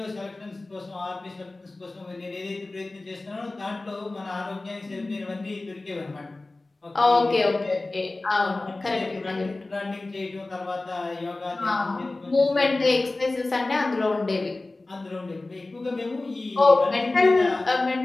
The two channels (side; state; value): right; quieter; 3.1 dB